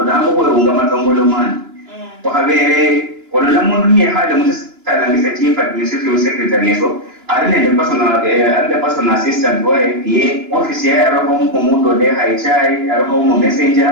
ndango kwa unga matongolo mani kwa habere wala mundu ni hada mutala ngisa chief administrative secretary yeso arine the personal assistant wa PA office ya roho mundo de haichai roho mu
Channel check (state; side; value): late; left; 2.9 ms